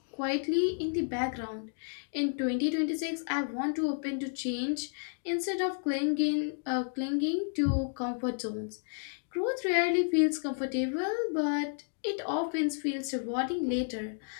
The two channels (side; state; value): right; silent; digital silence